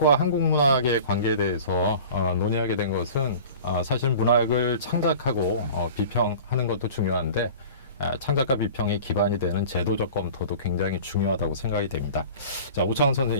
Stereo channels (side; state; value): both; inverted; correlation -0.40